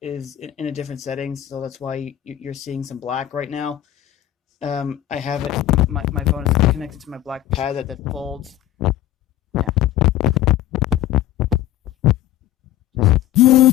in a different setting, so that's why you're seeing some black right now. I have it. My phone is connected to my black pad that folds. Yeah,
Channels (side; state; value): right; quieter; 13.3 dB